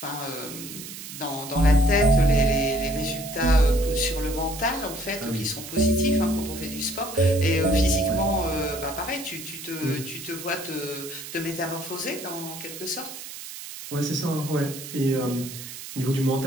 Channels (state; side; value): noise; right; hiss, 11 dB below the sound